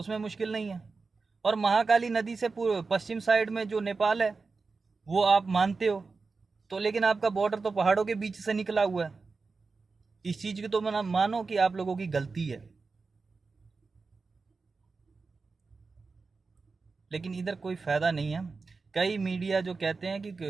मुश्किल नहीं है। और महाकाली नदी से पूर्व पश्चिम साइड में जो नेपाल है वो आप मानते हो, तो लेकिन आपका बॉर्डर तो पहाड़ों के बीच से निकला हुआ है। इस चीज की तो मानो कि आप लोगों की गलती है, लेकिन इधर कोई फायदा नहीं है। कई मीडिया जो कहते हैं कि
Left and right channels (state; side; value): quieter; left; 4.3 dB